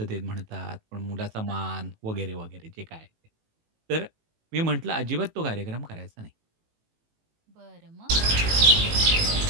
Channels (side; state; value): left; late; 18 ms